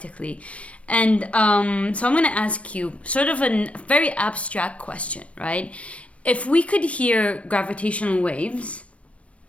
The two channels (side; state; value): right; late; 0.063 ms